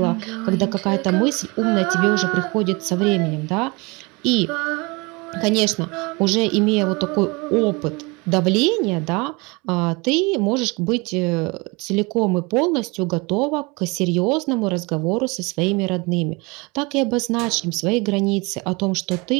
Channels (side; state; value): left; quieter; 27.0 dB